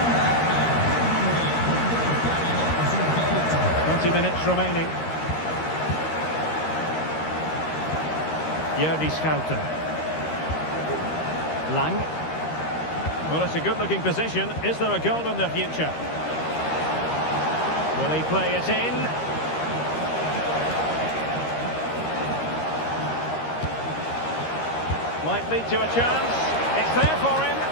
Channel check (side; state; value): right; late; 13 ms